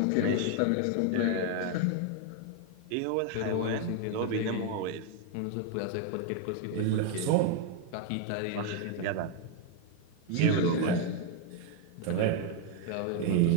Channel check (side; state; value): both; different; correlation 0.01